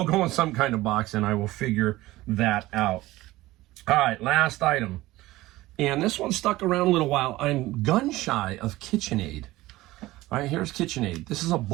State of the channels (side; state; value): left; quieter; 17.9 dB